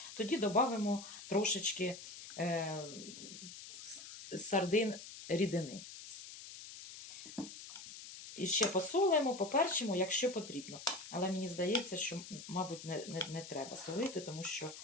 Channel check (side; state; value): left; noise; hiss, 13 dB below the sound